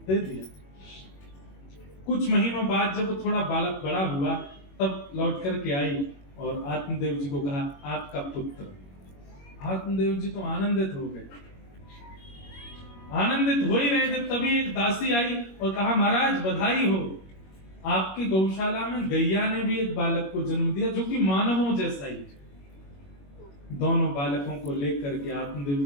दे दिया। कुछ महीनों बाद जब वो थोड़ा बालक बड़ा हुआ तब लौट करके आई और आत्मदेव जी को कहा आपका पुत्र। आत्मदेव जी तो आनंदित हो गए। आनंदित हो ही रहे थे तभी एक दासी आई और कहा महाराज बधाई हो, आपकी गौशाला में गैया ने भी एक बालक को जन्म दिया जो कि मानवों जैसा ही है। दोनों बालकों को लेकर के आत्मदेव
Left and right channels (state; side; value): late; right; 21 ms